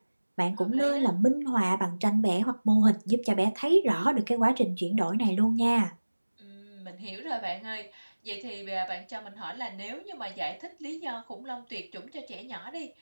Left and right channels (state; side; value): inverted; both; correlation -1.00